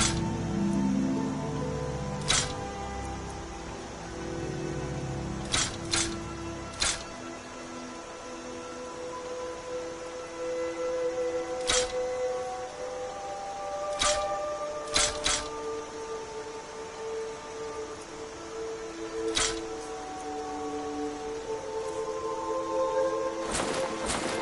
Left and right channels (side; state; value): both; identical; correlation 1.00